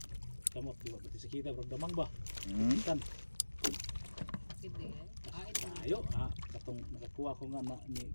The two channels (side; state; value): both; inverted; correlation -1.00